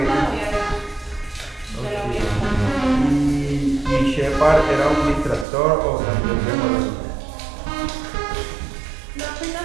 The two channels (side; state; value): left; drops out; at 5.5 s